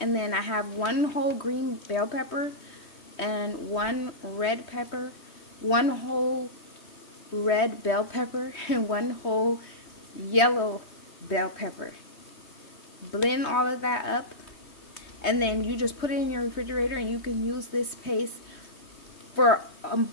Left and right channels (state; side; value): late; right; 3.2 ms